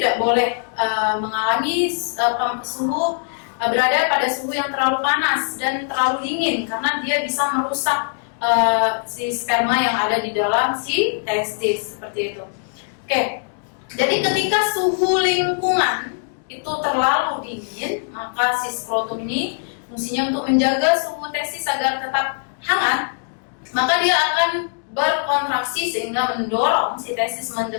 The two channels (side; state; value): right; silent; digital silence